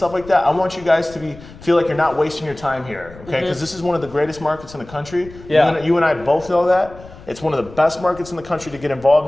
like that. I want you guys to feel like you're not wasting your time here, okay? Because this is one of the greatest markets in the country. Yeah. You and I both know that. It's one of the best markets in the country to get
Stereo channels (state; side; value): noise; left; rumble, 19 dB below the sound